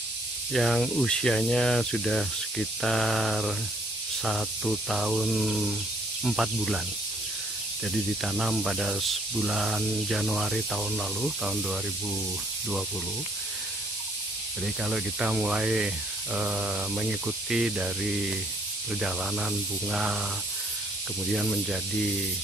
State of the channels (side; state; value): both; normal; correlation 0.64